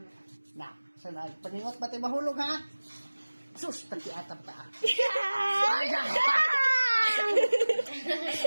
Na, sana paningot ba't ay mahulog, ha? Sus, takiatam ta.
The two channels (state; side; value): inverted; both; correlation -1.00